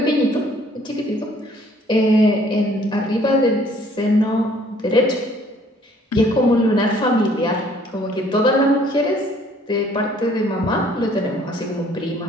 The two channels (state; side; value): normal; both; correlation 0.59